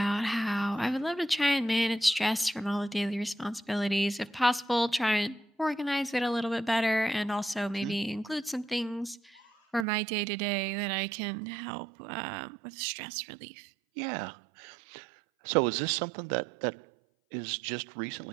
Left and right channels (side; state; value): left; drops out; at 9.9 s